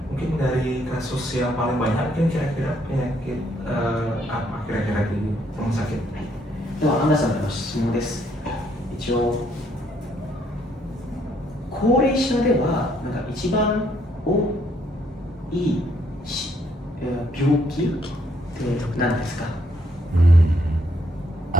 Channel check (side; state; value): both; normal; correlation 0.70